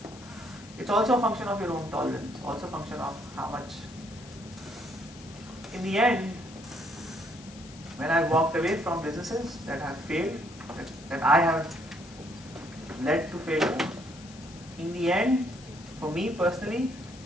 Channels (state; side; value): noise; left; hiss, 20 dB below the sound